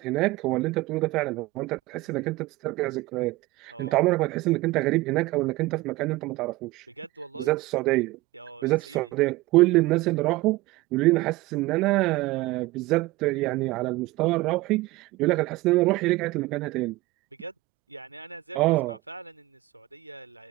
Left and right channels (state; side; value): quieter; left; 19.5 dB